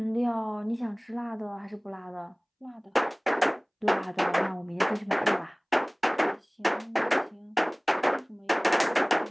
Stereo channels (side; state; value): both; identical; correlation 1.00